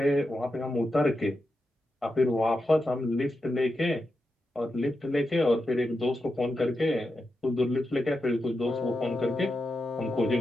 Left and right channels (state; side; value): normal; both; correlation 0.88